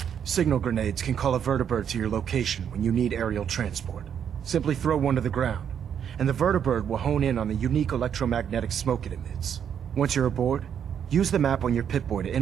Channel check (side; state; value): left; quieter; 8.4 dB